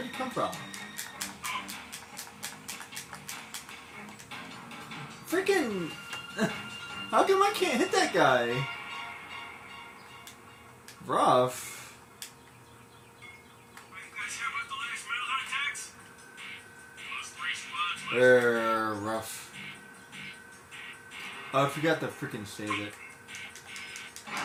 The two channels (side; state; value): both; identical; correlation 1.00